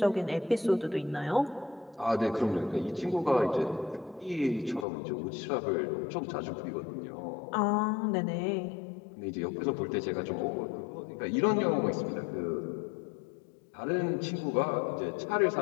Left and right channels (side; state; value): right; drops out; at 4.9 s